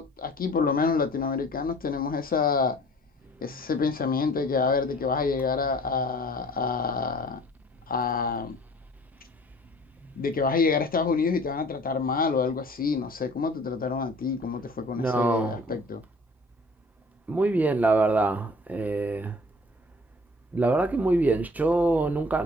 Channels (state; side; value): normal; both; correlation 0.50